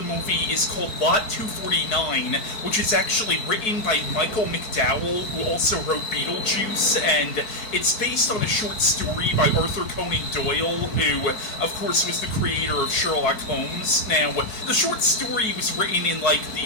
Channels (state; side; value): late; right; 4.6 ms